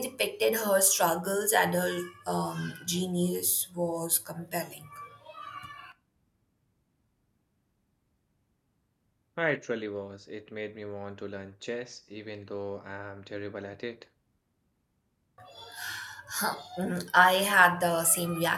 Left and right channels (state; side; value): identical; both; correlation 1.00